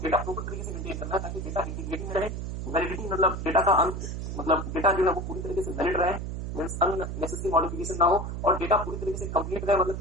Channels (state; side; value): noise; right; hum, 5 dB below the sound